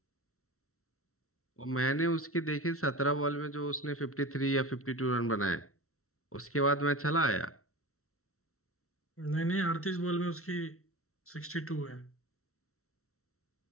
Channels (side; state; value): right; late; 0.63 ms